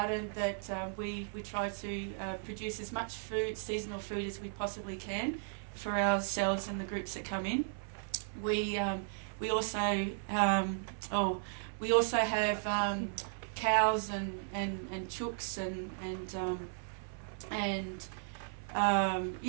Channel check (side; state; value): left; silent; 54 dB below the other